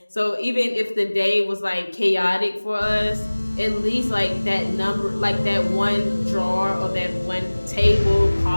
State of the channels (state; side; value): inverted; both; correlation -1.00